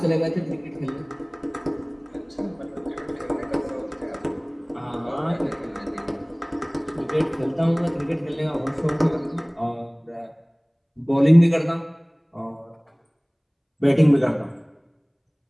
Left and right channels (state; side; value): identical; both; correlation 1.00